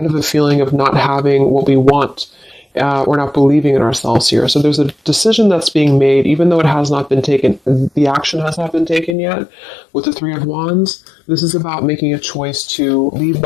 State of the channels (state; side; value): drops out; right; at 9.2 s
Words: of a feeling of not having what we want. Or not believing in ourselves here. So there's a decision that's being made, even though it has not been taken, the action has not been taken yet. With the Three of Wands, this is about making a choice to leave